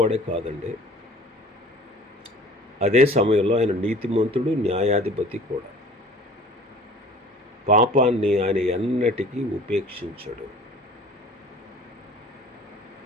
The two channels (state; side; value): normal; both; correlation 0.46